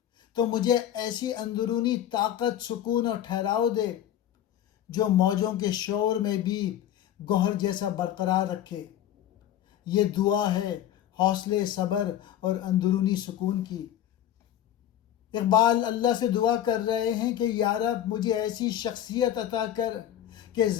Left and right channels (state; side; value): quieter; right; 11.3 dB